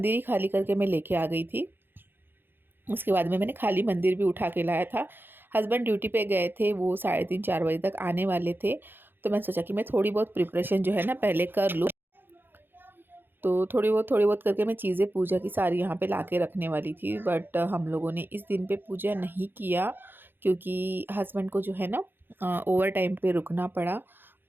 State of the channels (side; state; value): left; late; 0.099 ms